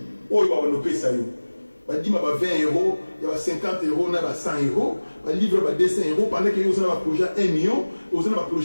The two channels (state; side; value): inverted; both; correlation -1.00